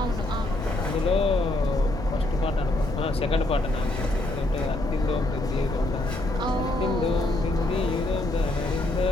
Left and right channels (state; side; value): noise; left; rumble, 7 dB below the sound